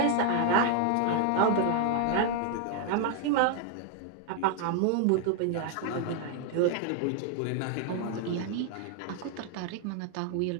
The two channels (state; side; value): different; both; correlation 0.00